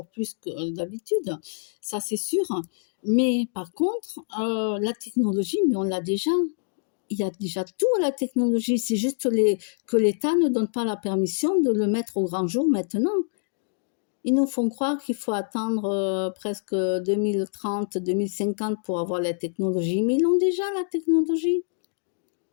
plus que d'habitude. Ça, c'est sûr. Mais par contre, la technologie, mais on l'a déjà. Il y a déjà tout à la technologie. C'est juste que l'État ne donne pas la permission de le mettre au grand jour maintenant. Ils nous font croire qu'il faut attendre presque 2030, 2050 pour avoir la technologie. Mais ils l'ont déjà, la technologie.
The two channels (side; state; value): right; silent; digital silence